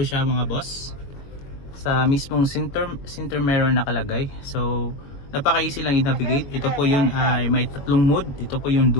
siya mga boss. Sa mismong center mirror nakalagay. So, napaka-easy lang i-navigate. Ito po yung may tatlong mode. Ito po yung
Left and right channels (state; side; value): late; right; 22 ms